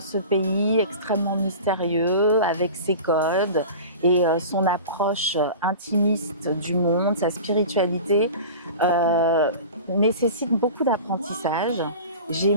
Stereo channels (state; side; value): inverted; both; correlation -0.35